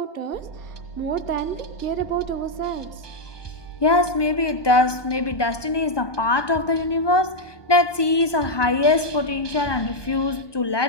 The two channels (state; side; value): late; right; 1.2 ms